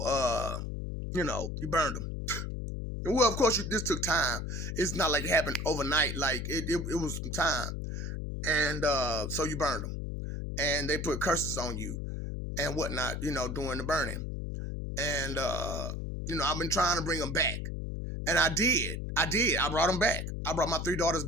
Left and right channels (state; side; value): noise; left; hum, 4 dB below the sound